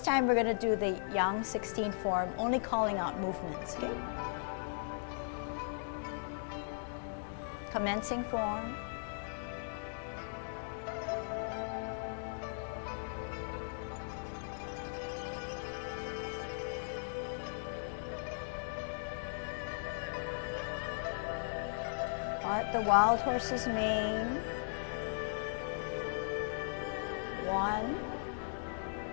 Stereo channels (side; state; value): right; silent; digital silence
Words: we're going to do the Yang 16 form, only calling out movements. Okay? Commencing form. at the wild horse's mane. 1,